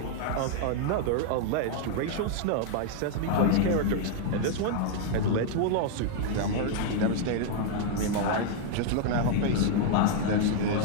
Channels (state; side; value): different; both; correlation 0.00